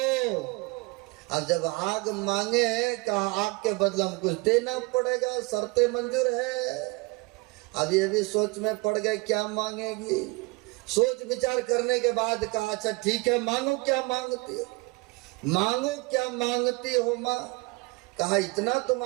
अब जब आग मांगे, कहा आग के बदले हम कुछ देना पड़ेगा, शर्तें मंजूर है। अब ये भी सोच में पड़ गए क्या मांगेगी। सोच विचार करने के बाद कहा अच्छा ठीक है, मांगो क्या मांगती हो, मांगो क्या मांगती हो माँ। कहा इतना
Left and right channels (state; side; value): quieter; left; 26.5 dB